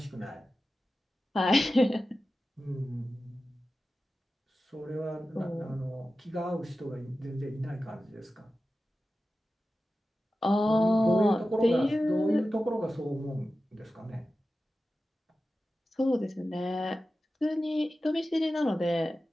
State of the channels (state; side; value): normal; both; correlation 0.94